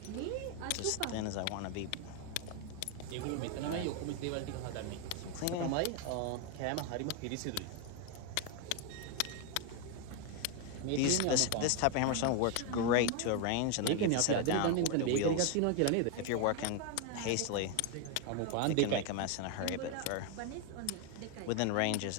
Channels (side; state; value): both; different; correlation 0.01